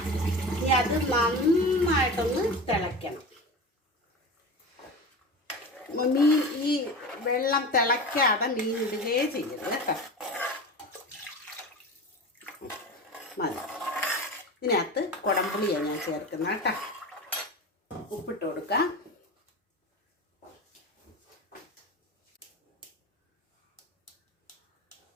ഇനി അത് നന്നായിട്ടൊന്ന് തിളയ്ക്കണം. മീൻ ഈ വെള്ളം തിളയ്ക്കാതെ മീൻ ഇടുകയേ ചെയ്യരുത് കേട്ടോ. മതി. ഇതിനകത്ത് കുടംപുളിയാണ് ഞാൻ ചേർക്കുന്നത് കേട്ടോ. ഉപ്പിട്ട് കൊടുക്കാം.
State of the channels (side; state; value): both; normal; correlation 0.29